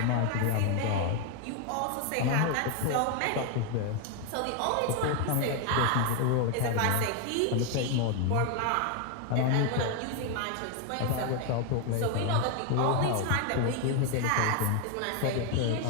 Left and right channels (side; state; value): both; different; correlation 0.01